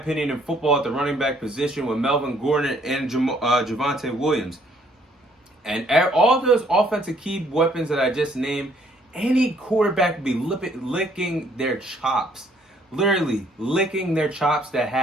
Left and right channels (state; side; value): normal; both; correlation 0.64